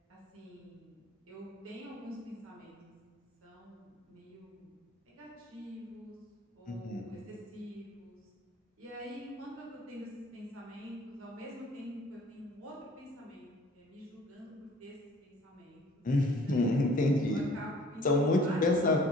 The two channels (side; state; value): both; normal; correlation 0.52